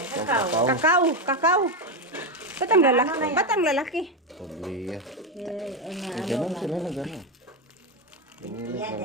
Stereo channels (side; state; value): both; normal; correlation 0.10